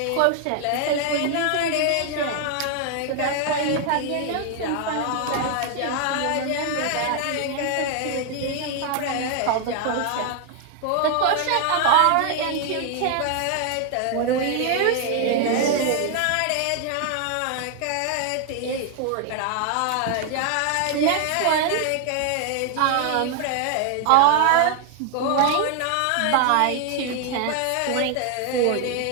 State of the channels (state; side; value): different; both; correlation 0.00